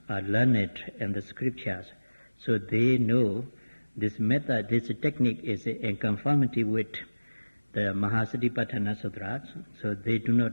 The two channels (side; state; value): both; inverted; correlation -1.00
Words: are learned in the scriptures, so they know this method, this technique is in conformity with the Mahasatipatthana Sutras, so they do